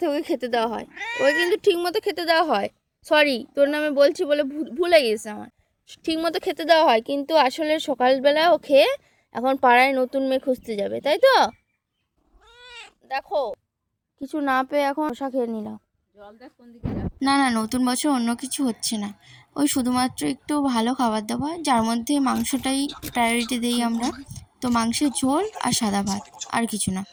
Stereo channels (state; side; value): identical; both; correlation 1.00